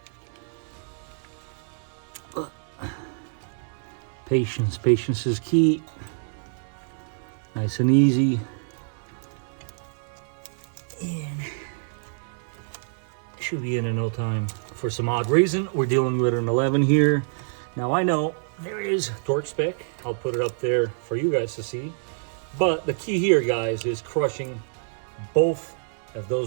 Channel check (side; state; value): left; silent; digital silence